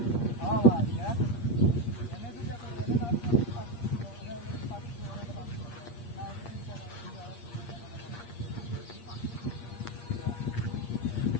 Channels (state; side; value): late; right; 8.6 ms